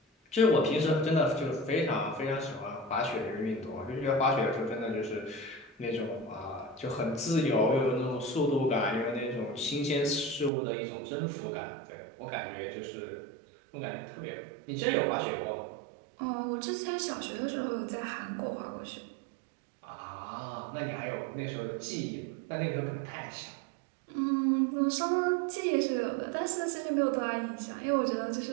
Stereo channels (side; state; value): left; drops out; at 10.5 s